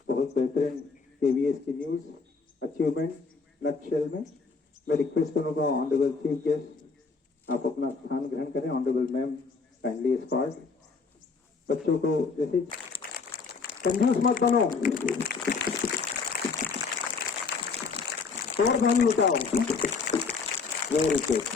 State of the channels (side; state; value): right; quieter; 4.7 dB